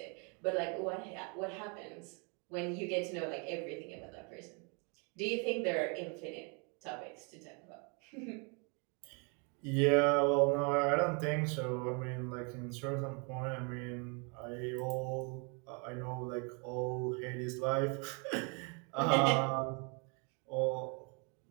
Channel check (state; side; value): quieter; left; 35.0 dB